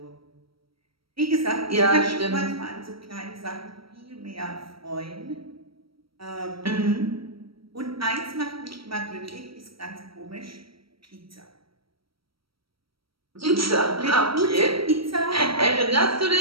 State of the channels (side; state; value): left; late; 0.75 ms